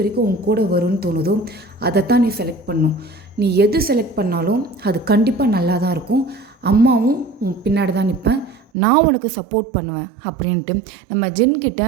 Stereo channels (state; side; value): drops out; left; at 8.7 s